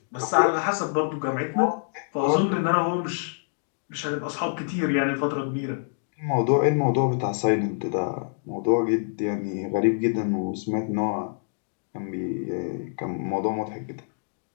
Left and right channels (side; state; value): right; silent; digital silence